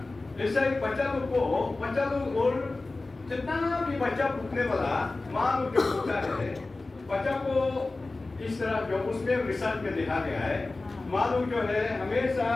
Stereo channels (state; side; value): quieter; right; 3.3 dB